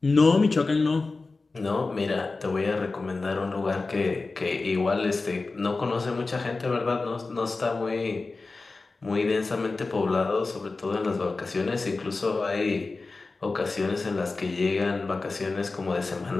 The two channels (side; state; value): right; quieter; 3.7 dB